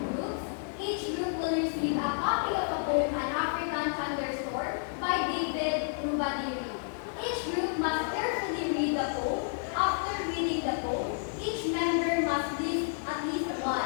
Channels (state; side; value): silent; right; digital silence